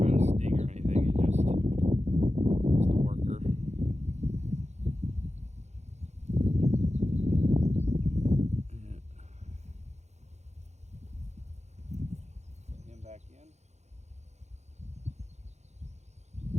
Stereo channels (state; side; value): late; left; 0.33 ms